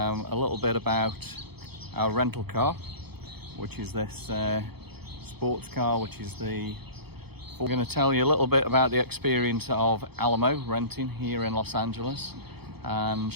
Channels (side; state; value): left; late; 0.97 ms